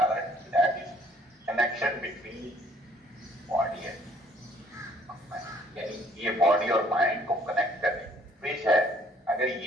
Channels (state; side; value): normal; both; correlation 0.60